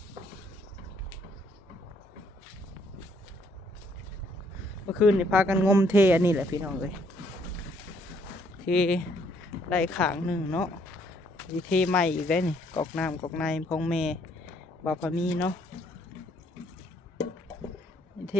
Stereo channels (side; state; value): both; normal; correlation 0.67